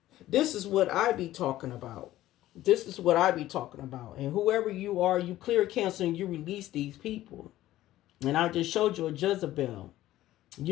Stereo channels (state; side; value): quieter; right; 14.7 dB